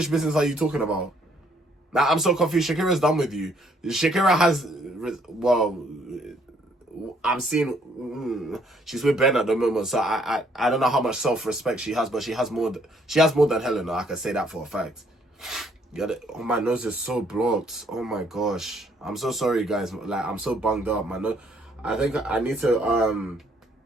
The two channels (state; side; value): normal; both; correlation 0.66